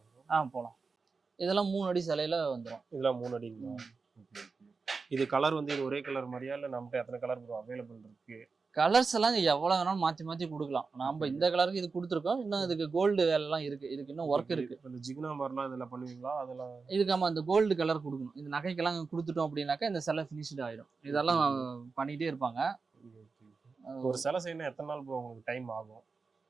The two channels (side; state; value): left; quieter; 4.5 dB